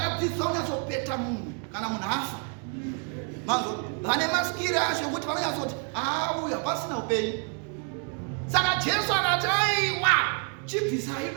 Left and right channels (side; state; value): left; quieter; 39.9 dB